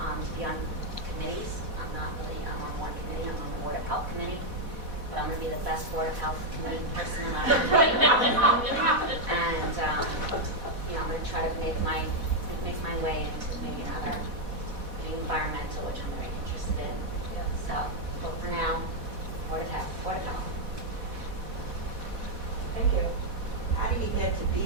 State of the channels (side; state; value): left; late; 4.1 ms